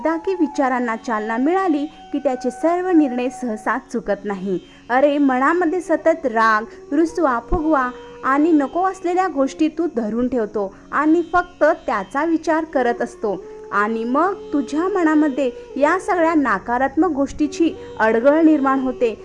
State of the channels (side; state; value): both; identical; correlation 1.00